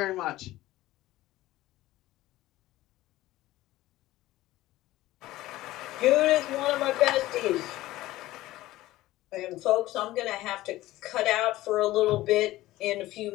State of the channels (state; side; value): quieter; right; 16.5 dB